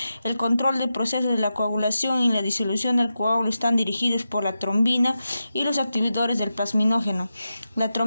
El control del proceso de la coagulación y la disolución del coágulo están dirigidos por la trombina y los activadores del plasminógeno. La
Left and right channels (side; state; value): both; inverted; correlation -0.90